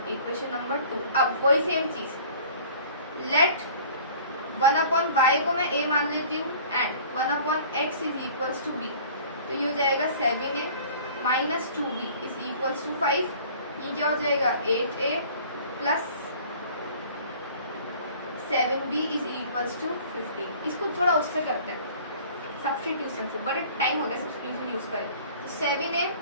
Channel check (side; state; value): both; inverted; correlation -0.48